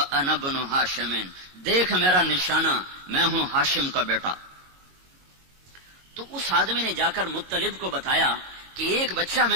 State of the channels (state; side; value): late; left; 22 ms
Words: ابن ہاشم، دیکھ میرا نشانہ، میں ہوں ہاشم کا بیٹا. تو اس آدمی نے جا کر مطلب کو بتایا کہ ایک بچہ